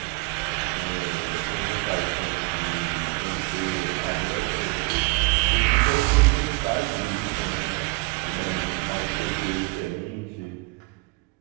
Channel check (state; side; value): quieter; left; 26.9 dB